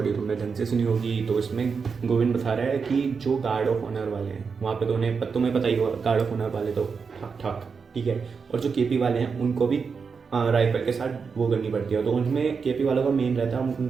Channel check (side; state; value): left; quieter; 5.5 dB